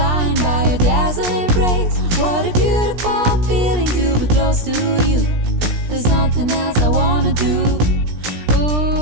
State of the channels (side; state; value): left; late; 17 ms